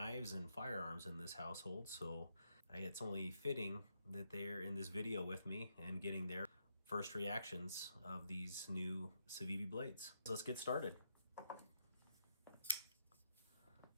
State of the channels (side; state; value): both; inverted; correlation -0.79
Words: and firearms in this household, so it's only fitting that they're in this video with me and getting their first reactions of these new Civivi blades. So let's get started.